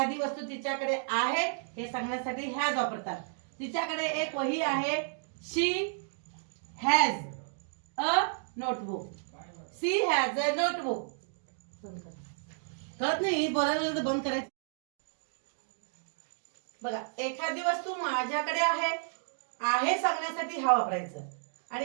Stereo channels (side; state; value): left; silent; digital silence